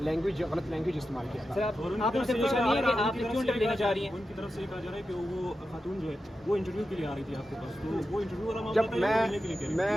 लैंग्वेज इस्तेमाल किया था। आप उनसे पूछ रही हैं कि आप क्यों इंटरव्यू लेना चाह रही हैं? उनकी तरफ से कहा जा रहा है कि वो खातून जो है वो इंटरव्यू के लिए आ रही थी आपके पास, तो वो इंटरव्यू वाला मामला था या मिलने के लिए कह रही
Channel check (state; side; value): normal; both; correlation 0.90